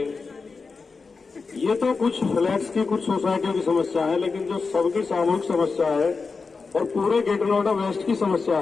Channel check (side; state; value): right; quieter; 4.6 dB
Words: ये तो कुछ फ्लैट्स की, कुछ सोसाइटियों की समस्या है, लेकिन जो सबकी सामूहिक समस्या है और पूरे ग्रेटर नोएडा वेस्ट की समस्या